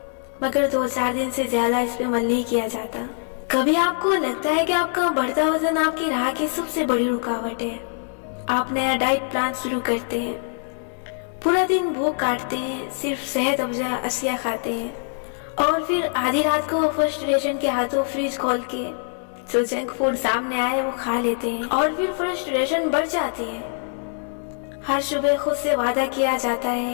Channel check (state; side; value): silent; right; 59 dB below the other